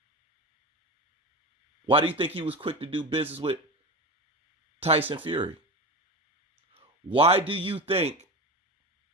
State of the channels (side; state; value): both; normal; correlation 0.25